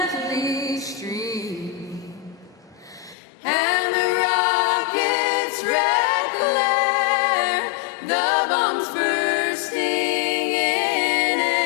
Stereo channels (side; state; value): right; drops out; at 3.2 s